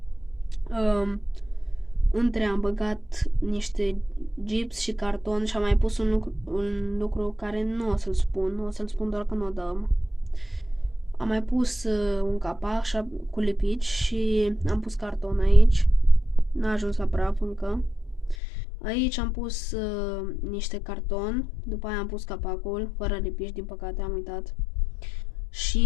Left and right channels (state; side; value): drops out; right; at 18.4 s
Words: Între am băgat niște gips și carton și am mai pus un lucru care nu o să-l spun, o să-l spun doar când o dăm. Am mai pus un capac cu lipici și am pus carton aici. N-a ajuns la praf încă. Aici am pus niște carton, după aia am pus capacul, fără lipici, din păcate am uitat.